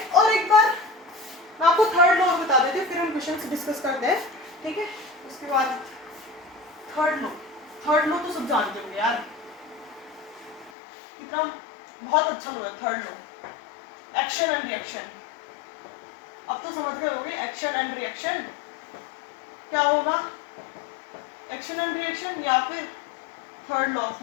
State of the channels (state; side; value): drops out; right; at 10.7 s